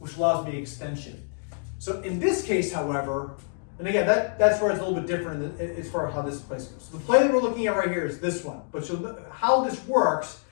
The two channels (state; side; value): silent; right; digital silence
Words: allows me extension. So in this case, however, and again, that's where it's a little bit different as far as how this place goes. So the play that we're looking at right here is this one. But so how this works